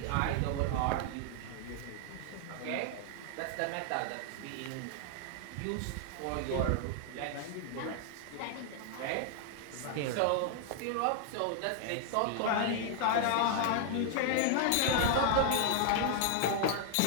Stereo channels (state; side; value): different; both; correlation 0.00